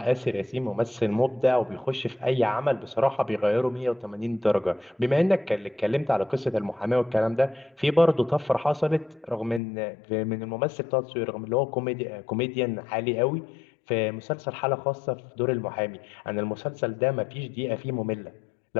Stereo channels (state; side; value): drops out; right; at 9.6 s